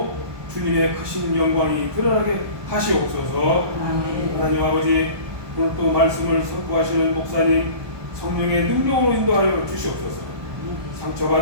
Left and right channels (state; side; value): late; left; 1.2 ms